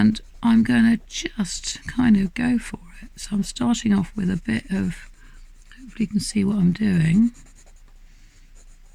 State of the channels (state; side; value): identical; both; correlation 1.00